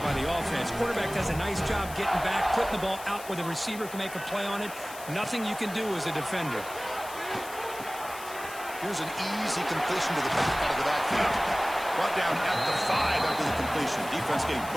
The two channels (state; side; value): noise; left; hiss, 14 dB below the sound